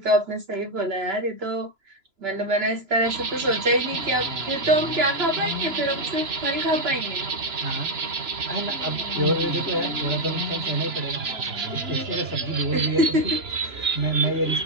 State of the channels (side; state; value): left; late; 2.9 ms